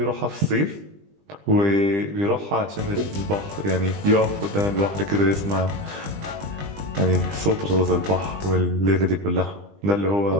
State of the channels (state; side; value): late; left; 20 ms